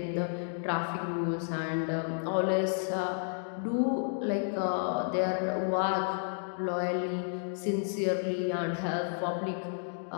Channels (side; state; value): right; silent; digital silence